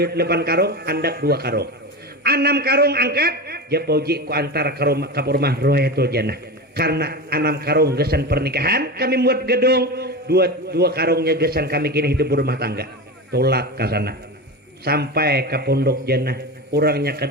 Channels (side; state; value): both; normal; correlation 0.24